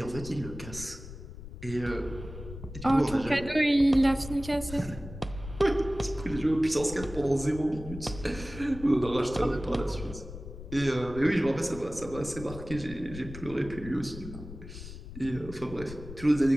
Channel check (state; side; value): noise; left; rumble, 12 dB below the sound